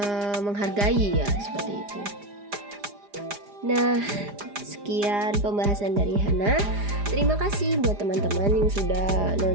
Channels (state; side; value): late; left; 4.9 ms